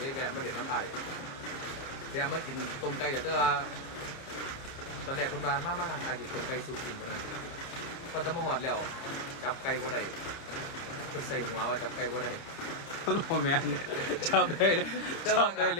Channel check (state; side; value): late; right; 30 ms